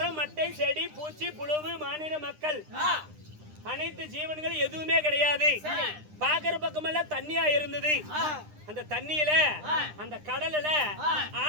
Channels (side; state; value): left; late; 9.9 ms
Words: மட்டை செடி பூச்சி புழுவு மானிட மக்கள் அனைத்து ஜீவன்கள் எதுவுமே கிடையாது. பாக்குற பக்கமெல்லாம் தண்ணியா இருந்தது. அந்த தண்ணியில அந்த கடல்ல